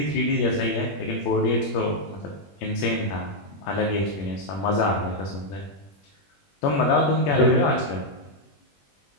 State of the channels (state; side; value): late; right; 21 ms